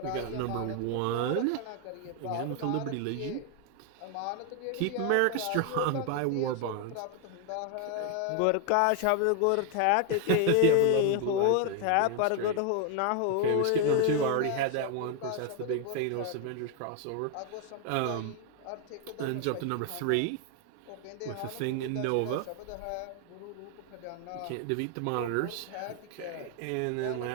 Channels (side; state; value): both; different; correlation 0.00